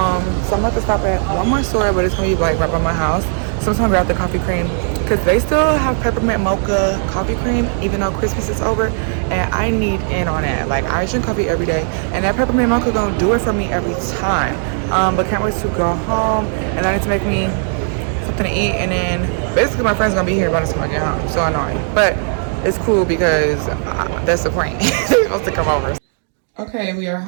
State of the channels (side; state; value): left; silent; 58 dB below the other